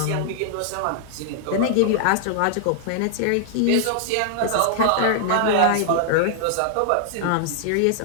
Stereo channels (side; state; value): both; different; correlation -0.01